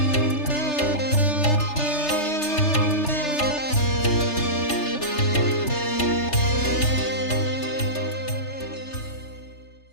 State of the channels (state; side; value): late; right; 3.3 ms